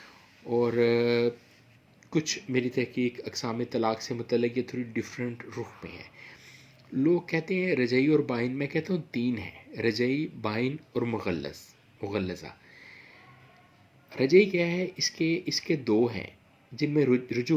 اور کچھ میری تحقیق اقسام طلاق سے متعلق یہ تھوڑی ڈیفرنٹ رخ میں ہے. لوگ کہتے ہیں رجعی اور بائن، میں کہتا ہوں 3 ہیں: رجعی، بائن اور مغلظہ. رجعی کیا ہے؟ اس کے 2 ہیں جن میں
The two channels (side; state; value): both; identical; correlation 1.00